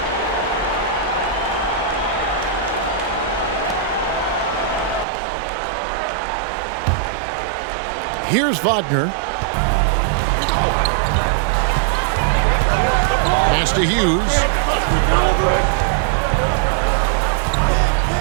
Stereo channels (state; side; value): drops out; left; at 5.1 s